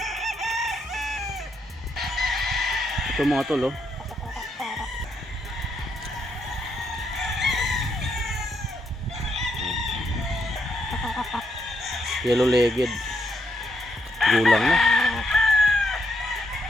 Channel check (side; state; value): both; normal; correlation 0.77